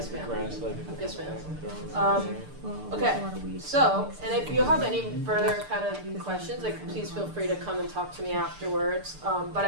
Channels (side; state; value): left; late; 6.7 ms